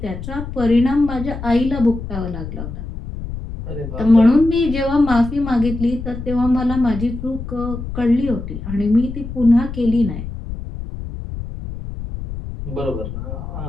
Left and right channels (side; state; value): left; noise; rumble, 8 dB below the sound